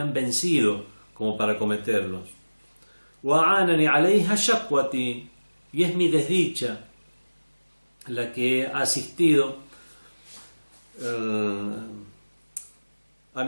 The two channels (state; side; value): inverted; both; correlation -1.00